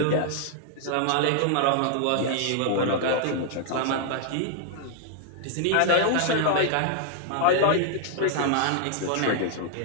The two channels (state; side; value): different; both; correlation 0.00